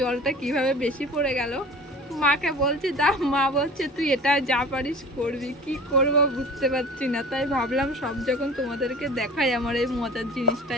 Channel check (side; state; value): both; normal; correlation 0.41